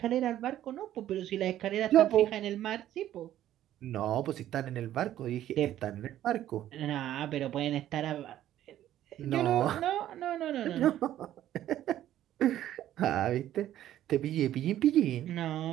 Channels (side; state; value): left; quieter; 12.5 dB